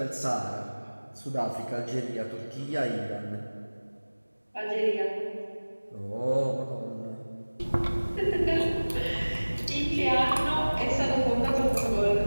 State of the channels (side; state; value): both; inverted; correlation -1.00